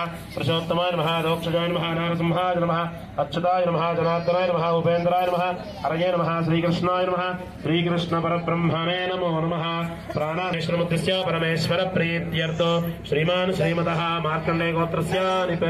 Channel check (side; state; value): both; identical; correlation 1.00